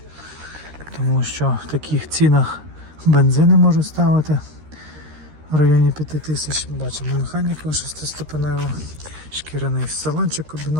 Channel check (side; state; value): left; late; 13 ms